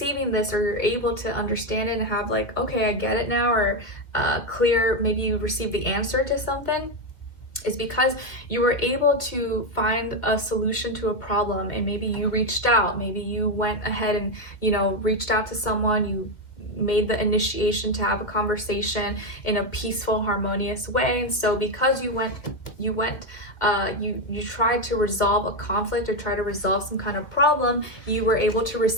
this, or you're able to understand it and have like, okay, I get it now, or clear, maybe you received the answer to something, is because you were able to find a solution to a problem, and maybe you reached out, maybe you went ahead and, you know, reached out to someone, you made the initiation to have a conversation in a peaceful, harmonious way. And so because you tried to resolve a conflict, or try to resolve some kind of problem, you were able to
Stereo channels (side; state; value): right; late; 2.0 ms